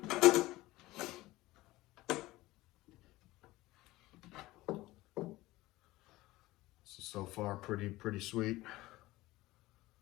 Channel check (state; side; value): quieter; right; 18.6 dB